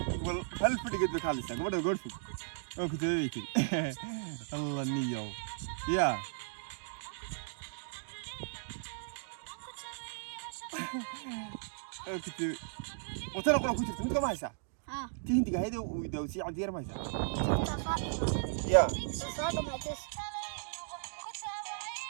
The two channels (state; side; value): silent; left; digital silence